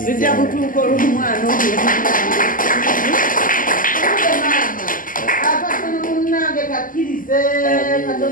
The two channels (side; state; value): right; late; 0.40 ms